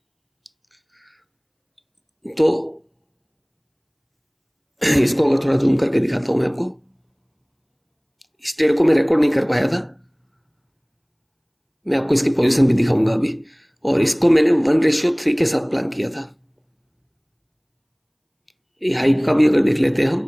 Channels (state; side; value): identical; both; correlation 1.00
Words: तो इसको अगर थोड़ा जूम करके दिखाता हूं मैं आपको। इस ट्रेड को मैं रिकॉर्ड नहीं कर पाया था, मैं आपको इसकी पोजीशन भी दिखाऊंगा अभी। और इसको मैंने 1:3 के साथ प्लान किया था। ये हाई का भी अगर देख लेते हैं हम,